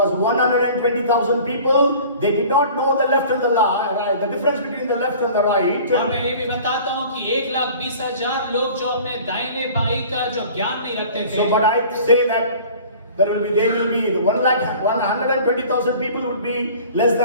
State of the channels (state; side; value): inverted; both; correlation -0.45